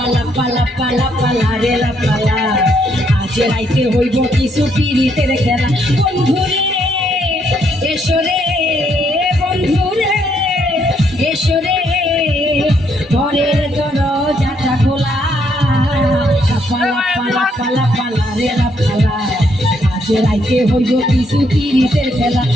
পালা পালা পালা রে লাপালা আজ রাইতে হইব কিছু পিরিতের খেলা বন্ধুরে এসো রে বন্ধুরে এসো রে ঘরের দরজাটা খোলা পালা পালা পালা পালা রে লাপালা আজ রাইতে হইব কিছু পিরিতের খেলা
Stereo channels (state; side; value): normal; both; correlation 0.73